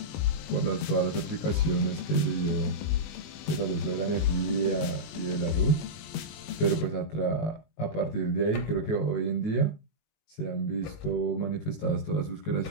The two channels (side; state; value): right; late; 19 ms